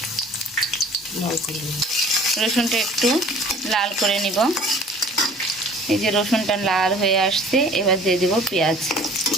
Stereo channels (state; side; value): normal; both; correlation 0.49